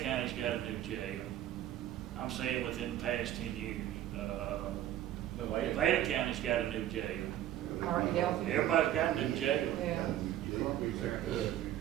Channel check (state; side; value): quieter; left; 12.4 dB